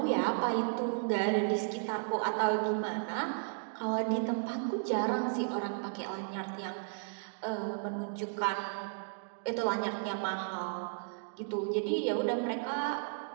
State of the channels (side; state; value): left; silent; digital silence